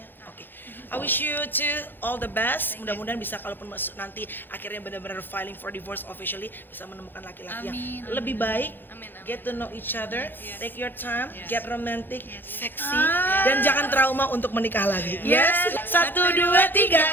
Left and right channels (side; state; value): right; late; 0.096 ms